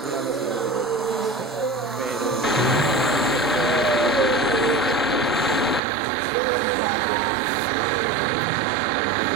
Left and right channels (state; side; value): drops out; left; at 5.8 s